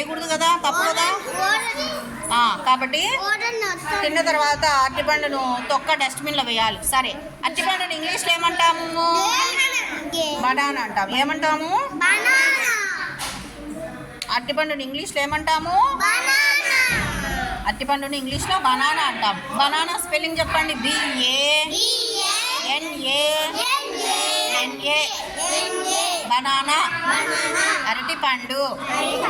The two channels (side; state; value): both; identical; correlation 1.00